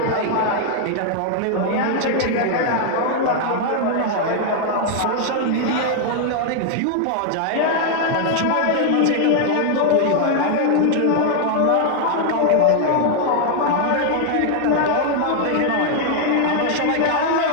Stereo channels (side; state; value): both; different; correlation 0.00